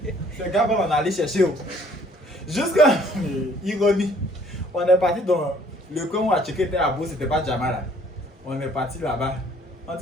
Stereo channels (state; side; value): normal; both; correlation 0.59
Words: Gaba, on est allé chercher. Jusqu'à ironie, on est parti dans le coin où on a checké était à beau, c'était pas diamant là. On est parti là-bas. On